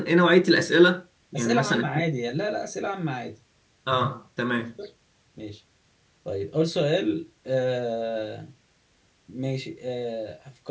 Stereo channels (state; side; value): identical; both; correlation 1.00